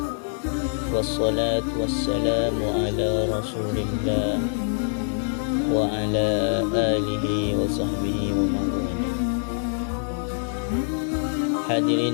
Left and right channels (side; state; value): right; silent; 56 dB below the other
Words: wassalatu wassalamu ala rasulillah wa ala alihi wa sahbihi wa mawala.